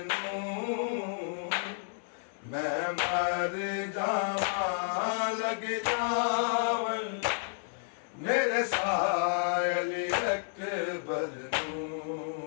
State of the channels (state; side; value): silent; right; 57 dB below the other